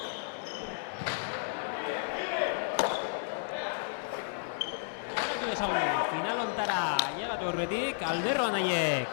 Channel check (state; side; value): silent; right; 56 dB below the other